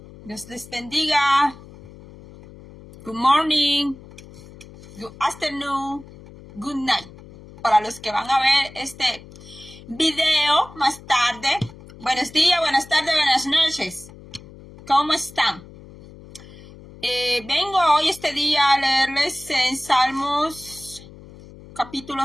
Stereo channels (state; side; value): noise; left; hum, 19 dB below the sound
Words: Dios les bendiga. Good morning. Good afternoon. Good night. Para los que van a ver este video más tarde. Buenos días, buenas tardes, buenas noches. ¿Cómo están? Vengo hoy este día a leerles en Salmos